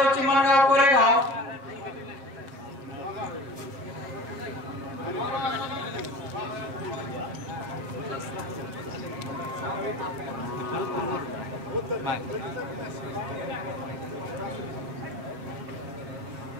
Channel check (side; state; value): left; late; 7.1 ms